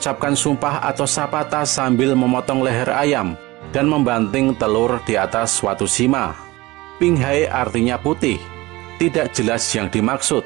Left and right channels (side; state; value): left; quieter; 20.4 dB